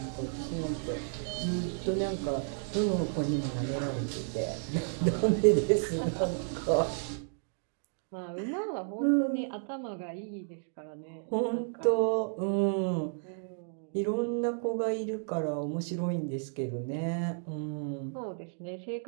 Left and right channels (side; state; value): left; silent; digital silence